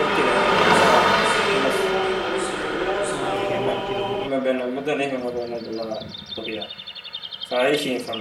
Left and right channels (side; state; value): both; identical; correlation 1.00